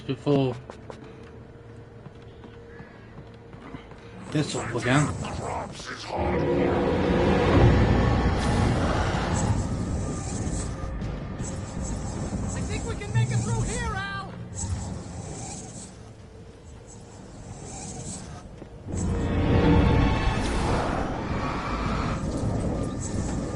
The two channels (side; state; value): both; identical; correlation 1.00